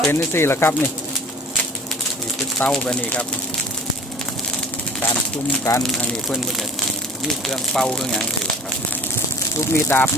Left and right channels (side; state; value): both; normal; correlation 0.44